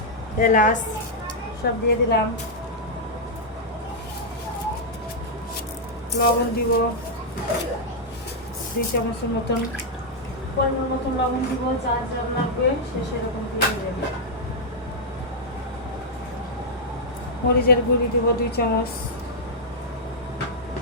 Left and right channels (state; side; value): normal; both; correlation -0.05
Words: এলাচ সব দিয়ে দিলাম। লবণ দিব 2 চামচের মতন, পরিমাণ মতন লবণ দিব, যা যা লাগবে সে সেরকম দিয়ে দেবেন। মরিচের গুঁড়ি দিব 2 চামচ,